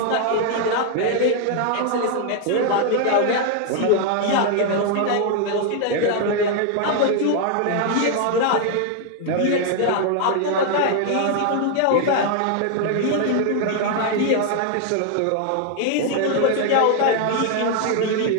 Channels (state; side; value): different; both; correlation 0.00